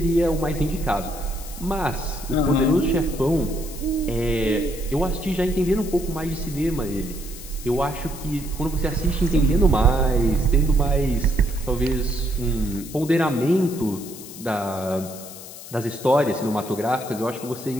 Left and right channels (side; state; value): left; noise; hiss, 14 dB below the sound